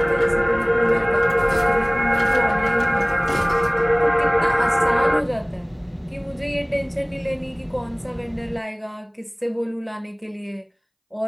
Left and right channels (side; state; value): both; identical; correlation 1.00